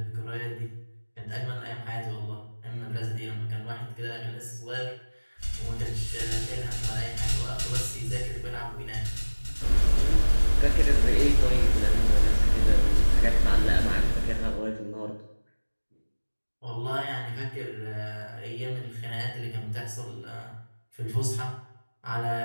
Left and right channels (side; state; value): both; inverted; correlation -1.00